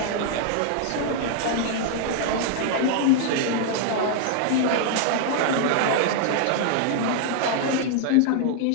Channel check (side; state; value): both; different; correlation 0.00